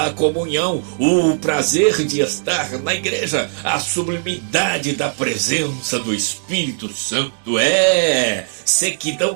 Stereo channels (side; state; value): left; silent; digital silence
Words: comunhão, o prazer de estar na igreja, a sublimidade da presença do Espírito Santo. Sequidão